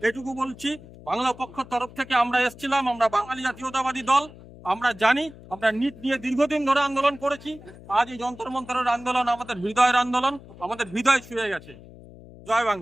এটুকু বলছি। বাংলা পক্ষের তরফ থেকে আমরা এসেছিলাম, আমরা বাঙালি জাতীয়তাবাদী দল, আমরা জানি আমরা নিট নিয়ে দীর্ঘদিন ধরে আন্দোলন করেছি। আজ এই যন্তর মন্তরের আন্দোলন আমাদের হৃদয়ের আন্দোলন, আমাদের হৃদয় ছুঁয়ে গেছে। জয়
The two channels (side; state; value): left; noise; hum, 19 dB below the sound